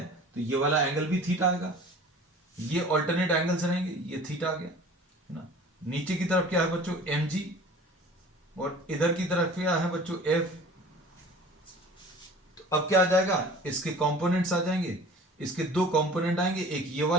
तो ये वाला एंगल भी थीटा आएगा। ये ऑल्टरनेट एंगल्स रहेंगे, ये थीटा आ गया, है ना। नीचे की तरफ क्या है बच्चों, mg, और इधर की तरफ क्या है बच्चों, f। तो अब क्या आ जाएगा, इसके कंपोनेंट्स आ जाएंगे, इसके दो कंपोनेंट आएंगे, एक ये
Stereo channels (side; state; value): both; normal; correlation 0.45